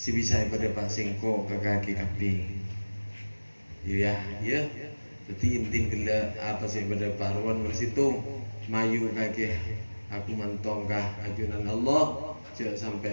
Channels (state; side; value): inverted; both; correlation -1.00